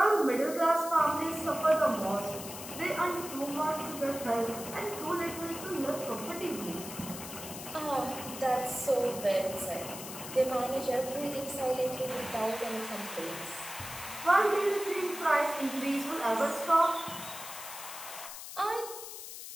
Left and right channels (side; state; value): left; noise; hiss, 10 dB below the sound